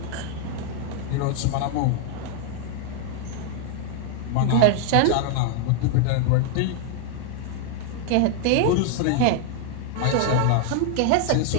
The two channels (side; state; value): both; different; correlation 0.00